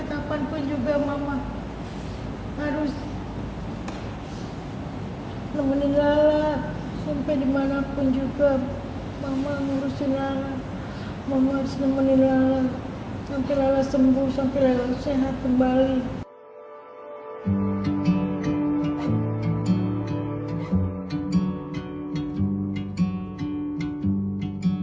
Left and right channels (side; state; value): both; identical; correlation 1.00